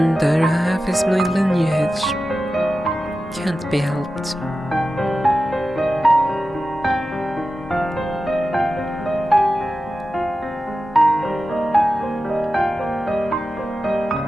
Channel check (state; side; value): normal; both; correlation 0.93